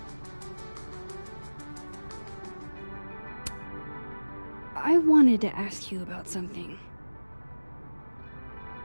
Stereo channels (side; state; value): both; inverted; correlation -1.00